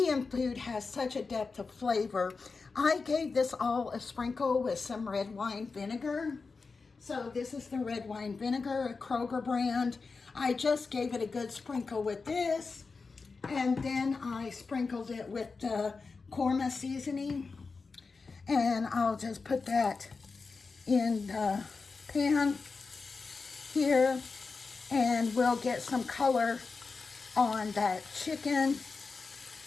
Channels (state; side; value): quieter; right; 4.4 dB